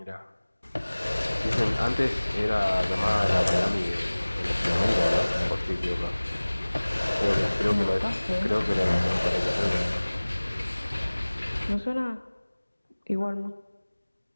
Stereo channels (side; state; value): both; inverted; correlation -1.00